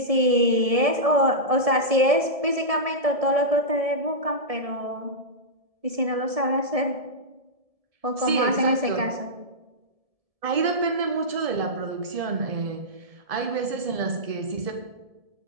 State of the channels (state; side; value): late; left; 1.7 ms